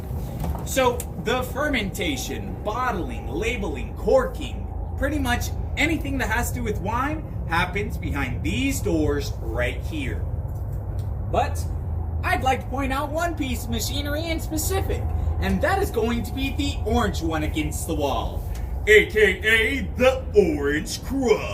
So the fermentation, bottling, labeling, corking, pretty much anything that has to do with wine happens behind these doors right here. But I'd like to point out one piece of machinery in specific, and that is going to be the orange one against the wall, aka the Orange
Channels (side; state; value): both; identical; correlation 1.00